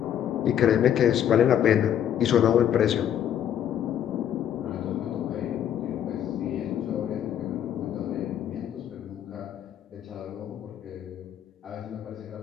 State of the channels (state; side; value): quieter; right; 10.0 dB